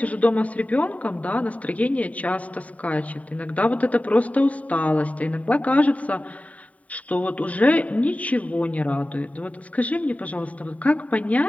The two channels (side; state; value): right; late; 0.069 ms